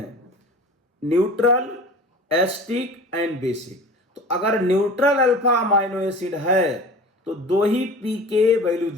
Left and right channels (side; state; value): both; normal; correlation 0.39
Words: न्यूट्रल, एस्टिक एंड बेसिक। तो अगर न्यूट्रल अल्फा अमाइनो एसिड है तो 2 ही pK वैल्यू